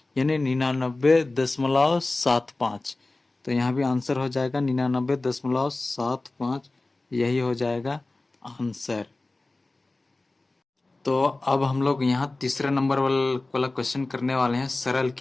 यानी 99.75। तो यहाँ भी आंसर हो जाएगा 99.75, यही हो जाएगा आंसर। तो अब हम लोग यहाँ तीसरे नंबर वाला क्वेश्चन करने वाले हैं, सरल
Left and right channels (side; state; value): right; quieter; 3.1 dB